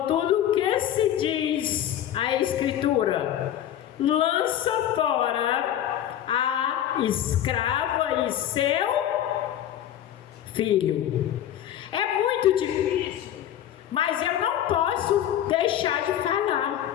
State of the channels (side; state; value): right; quieter; 11.2 dB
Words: o que se diz a Escritura? Lança fora a escrava e seu filho. É muito difícil, mas eu não posso deixar de